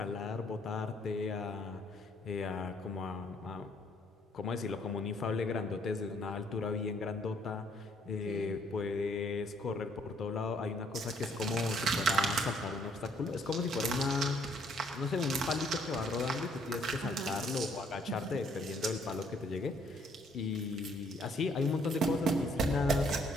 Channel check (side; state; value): both; normal; correlation 0.65